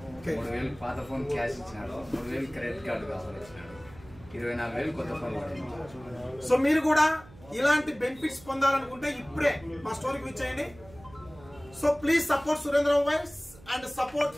3,000 పాత ఫోన్ క్యాష్ ఇచ్చినాడు, 3,000 క్రెడిట్ కార్డు ఆఫర్ ఇచ్చినాడు, 24,000 కొత్త ఫోన్ పడింది. సో మీరు కూడా ఇలాంటి బెనిఫిట్స్ పొందాలనుకుంటే ఇప్పుడే మా స్టోర్కి విజిట్ చేయండి. So please support Surendra mobiles and support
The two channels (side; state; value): right; noise; hum, 21 dB below the sound